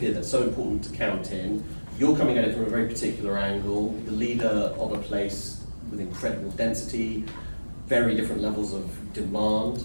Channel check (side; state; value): both; inverted; correlation -1.00